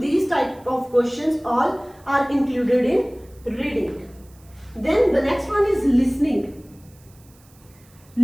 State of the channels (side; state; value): right; noise; hiss, 29 dB below the sound